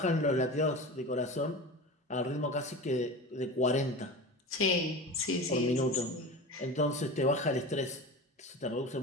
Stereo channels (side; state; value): both; normal; correlation 0.31